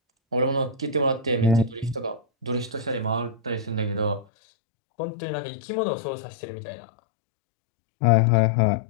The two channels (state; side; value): drops out; right; at 4.2 s